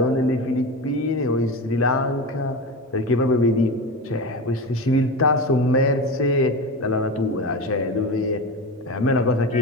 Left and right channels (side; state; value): both; normal; correlation 0.24